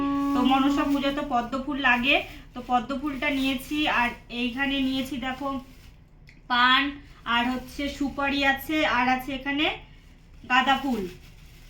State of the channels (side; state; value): both; identical; correlation 1.00